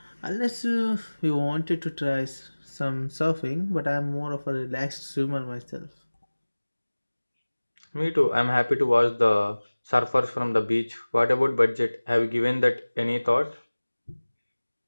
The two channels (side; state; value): both; inverted; correlation -1.00